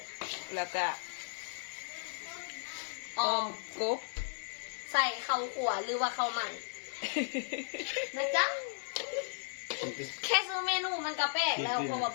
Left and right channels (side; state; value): right; silent; digital silence